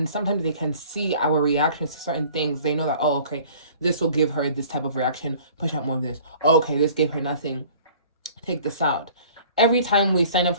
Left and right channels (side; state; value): both; inverted; correlation -0.50